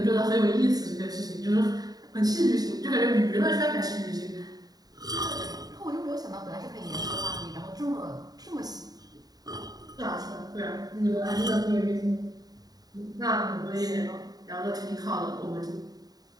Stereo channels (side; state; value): left; late; 0.18 ms